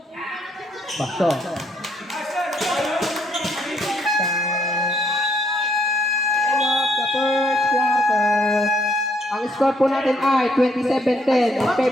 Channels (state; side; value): normal; both; correlation 0.70